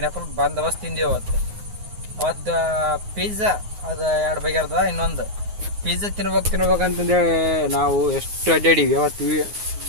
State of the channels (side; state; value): left; late; 9.6 ms